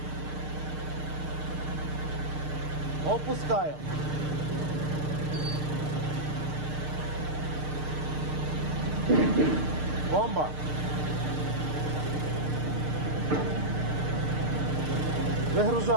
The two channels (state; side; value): late; left; 6.6 ms